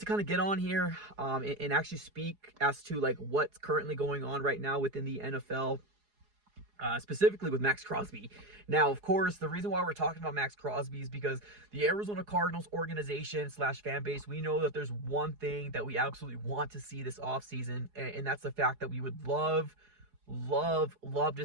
kind of get on here and actually speak as to like what's currently going on right now within the NFL. Specifically with Maxx Crosby. Now, of course, the reason why we're talking about Maxx Crosby is because the Arizona Cardinals organization / fan base, we know that there's one thing that we absolutely want to see this offseason, and that's the fact that we would love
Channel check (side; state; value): left; late; 4.8 ms